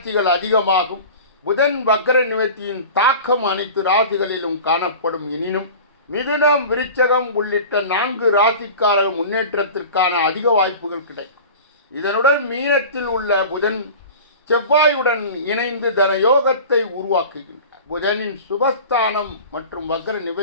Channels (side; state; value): both; inverted; correlation -0.37